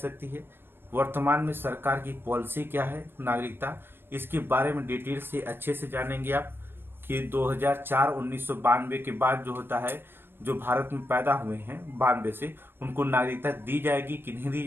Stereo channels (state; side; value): late; left; 0.10 ms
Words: है, वर्तमान में सरकार की पॉलिसी क्या है नागरिकता, इसके बारे में डिटेल से अच्छे से जानेंगे आप कि 1992 के बाद जो होता है जो भारत में पैदा हुए हैं 92 से, उनको नागरिकता दी जाएगी कि नहीं दी